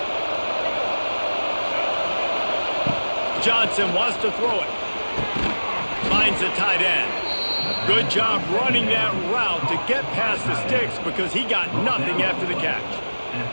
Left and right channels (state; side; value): inverted; both; correlation -1.00